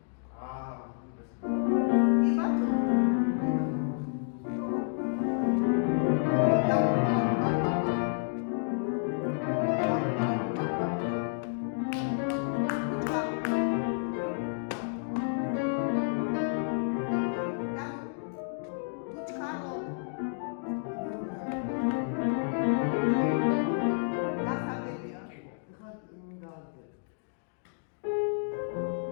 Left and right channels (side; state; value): right; silent; digital silence